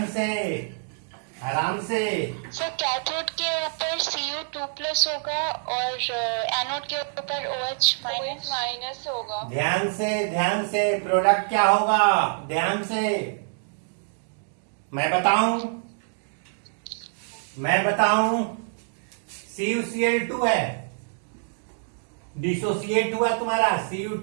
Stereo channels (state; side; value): silent; left; digital silence